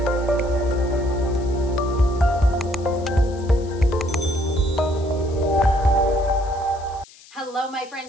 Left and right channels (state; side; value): noise; left; hiss, 23 dB below the sound